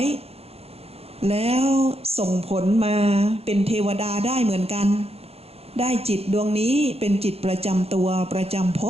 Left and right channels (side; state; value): left; late; 0.29 ms